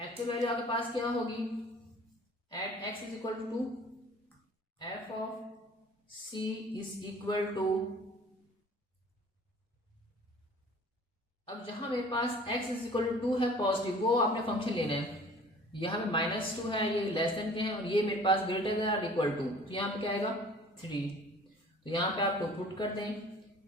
actual value आपके पास क्या होगी, at x is equal to F of C is equal to, अब जहां मेरे पास x इज इक्वल टू 2 है पॉजिटिव, वो आपने फंक्शन लेना है। यहाँ पे -2 है, ये लेस देन के हैं, और ये मेरे पास ग्रेटर देन और इक्वल टू, तो यहाँ पे क्या आएगा 3। तो यहाँ पे आप पुट कर दें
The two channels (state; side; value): normal; both; correlation 0.49